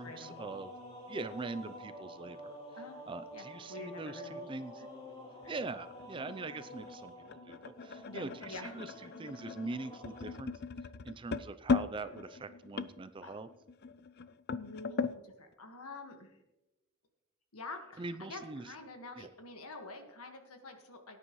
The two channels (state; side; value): normal; both; correlation 0.34